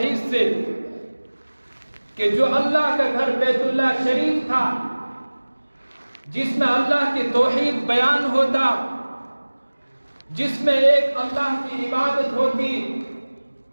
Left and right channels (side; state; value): both; inverted; correlation -1.00